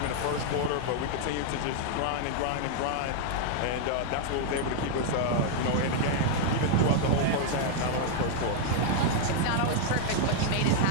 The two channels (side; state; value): both; different; correlation 0.00